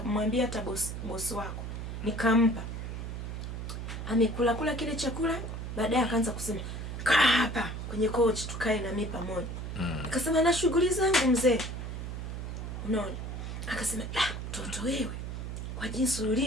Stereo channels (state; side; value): noise; right; hum, 6 dB below the sound